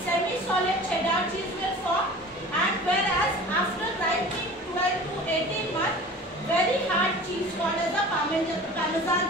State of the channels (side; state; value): both; normal; correlation 0.40